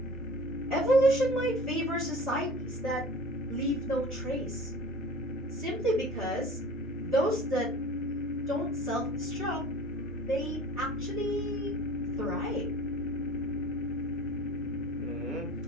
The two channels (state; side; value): normal; both; correlation 0.42